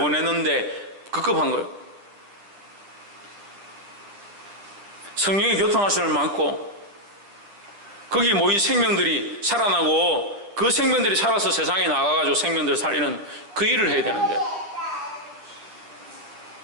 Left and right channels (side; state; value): left; late; 9.9 ms